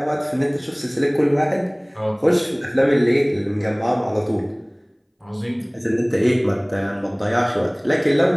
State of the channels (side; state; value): both; identical; correlation 1.00